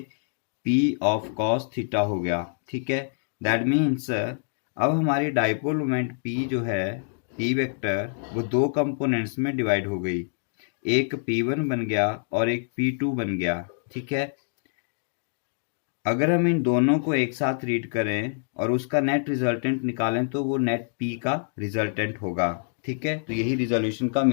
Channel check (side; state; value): right; silent; digital silence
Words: P ऑफ कॉस थीटा हो गया। ठीक है, दैट मीन्स अब हमारी डाइपोल मोमेंट P जो है P वेक्टर, वो दो कंपोनेंट्स में डिवाइड हो गई, एक P1 बन गया और एक P2 बन गया। ठीक है, अगर हम इन दोनों को एक साथ रीड करें और उसका नेट रिजल्टेंट निकालें तो वो नेट P का रिजल्टेंट होगा। ठीक है, तो यही रिजोल्यूशन का